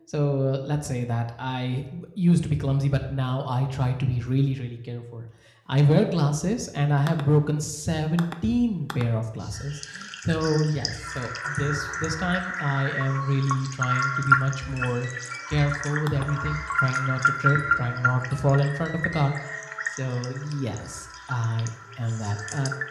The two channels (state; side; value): identical; both; correlation 1.00